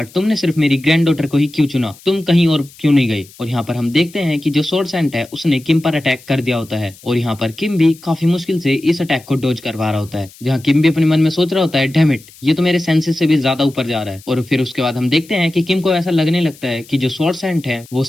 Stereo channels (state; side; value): noise; left; hiss, 23 dB below the sound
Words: तुमने सिर्फ मेरी ग्रैंड डॉटर को ही क्यों चुना, तुम कहीं और क्यों नहीं गए? और यहाँ पर हम देखते हैं कि जो स्वॉर्ड सैंड है उसने किम पर अटैक कर दिया होता है, और यहाँ पर किम भी काफी मुश्किल से इस अटैक को डॉज करवा रहा होता है। जहाँ किम भी अपने मन में सोच रहा होता है, डैम इट, ये तो मेरे सेंसेस से भी ज्यादा ऊपर जा रहा है। और फिर उसके बाद हम देखते हैं कि किम को ऐसा लगने लगता लगता है कि जो स्वॉर्ड सेंट है वो